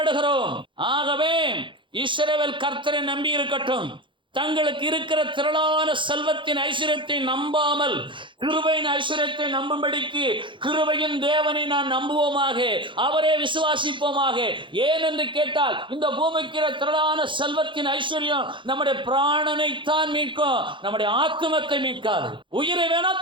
ஆகவே இஸ்ரவேல் கர்த்தரை நம்பி இருக்கட்டும். தங்களுக்கு இருக்கிற திரளான செல்வத்தின் ஐஸ்வர்யத்தை நம்பாமல் கிருபையின் ஐஸ்வர்யத்தை நம்பும்படிக்கு கிருபையின் தேவனை நான் நம்புவோமாக, அவரே விசுவாசிப்போமாக. ஏனென்று கேட்டால் இந்த பூமிக்கு திரளான செல்வத்தின் ஐஸ்வர்யம் நம்முடைய பிராணனைத்தான் மீட்கும், நம்முடைய ஆத்துமத்தை மீட்காது. உயிரை வேணா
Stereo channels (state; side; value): late; left; 0.24 ms